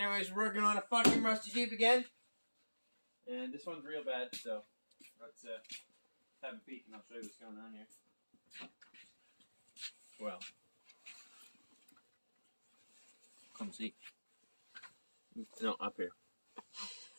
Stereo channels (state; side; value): inverted; both; correlation -1.00